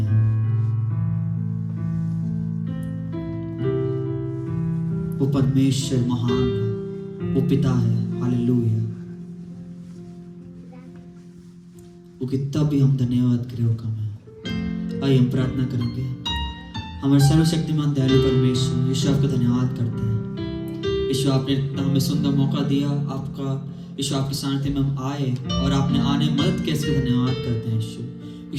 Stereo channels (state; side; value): identical; both; correlation 1.00